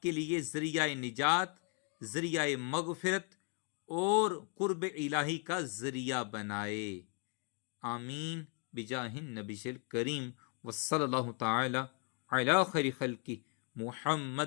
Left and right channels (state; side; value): quieter; right; 38.0 dB